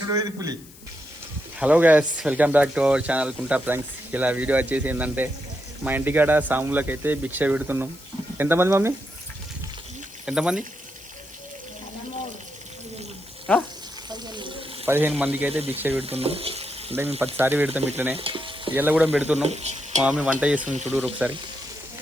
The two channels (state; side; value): noise; left; hiss, 22 dB below the sound